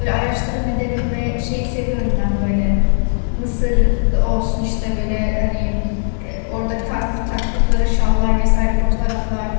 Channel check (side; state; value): right; silent; digital silence